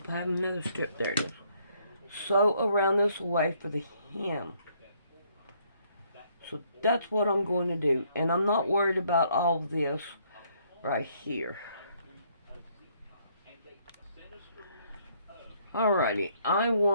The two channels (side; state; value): both; inverted; correlation -0.68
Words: I have another strip. There it is. Sew around this way for the hem. So that's what I'm going to do. And I'm not worried about all this right here. Alrighty, I